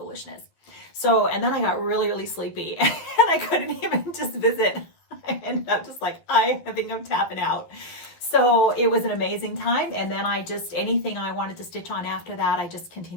So, and then I got really, really sleepy and I couldn't even just visit. I ended up just like, I think I'm tapping out. So it was an amazing time. And then I just, anything I wanted to stitch on after that, I just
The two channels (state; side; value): late; right; 12 ms